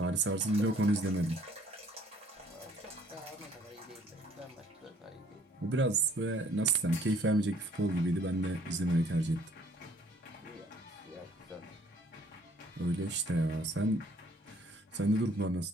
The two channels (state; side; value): normal; both; correlation 0.60